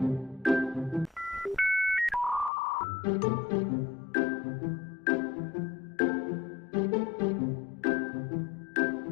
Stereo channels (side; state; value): right; drops out; at 2.5 s